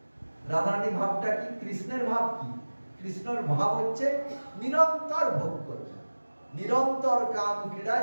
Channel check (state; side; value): inverted; both; correlation -1.00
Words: রাধারানী ভাবটা কি? কৃষ্ণের ভাব কি? কৃষ্ণের ভাব হচ্ছে নিরন্তর ভোগ করবে, নিরন্তর কাম ক্রীড়া